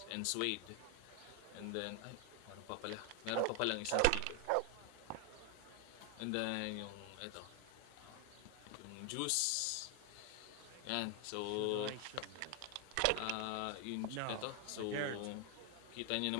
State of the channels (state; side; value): different; both; correlation 0.00